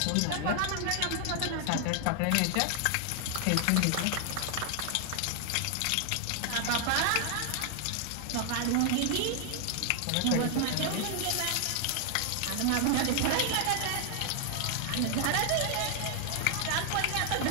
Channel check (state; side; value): different; both; correlation 0.00